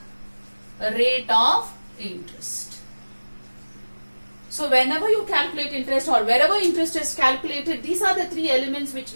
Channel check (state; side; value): inverted; both; correlation -1.00